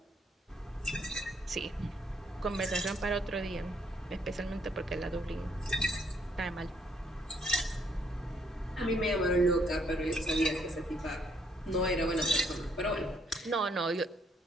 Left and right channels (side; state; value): both; normal; correlation 0.69